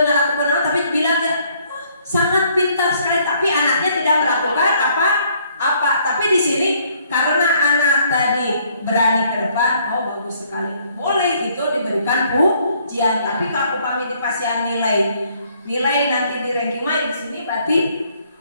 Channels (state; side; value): inverted; both; correlation -0.65